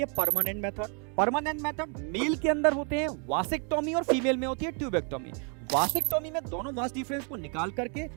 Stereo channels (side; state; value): left; quieter; 38.6 dB